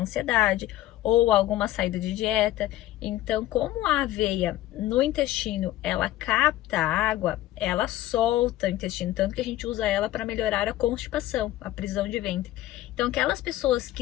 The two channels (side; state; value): right; quieter; 14.8 dB